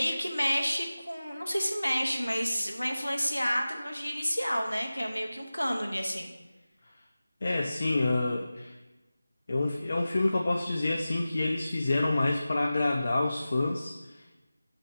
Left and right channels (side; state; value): both; inverted; correlation -0.96